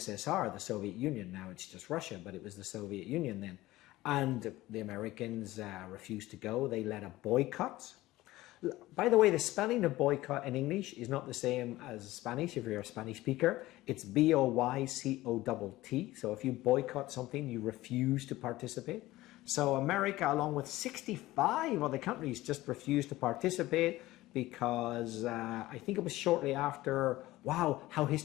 the Soviet Union. Now it's just Russia, but it was the Soviet Union then. And the Americans refused to go. They led a boycott. By the way, the spelling of boycott in English is not the same as Spanish if you're a Spanish speaker. It's B-O-Y-C-O-T-T. So if you boycott something, you refuse to participate. So America, along with 65 other countries, just refused to participate because I think it was shortly after, wow, how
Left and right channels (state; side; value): quieter; right; 17.4 dB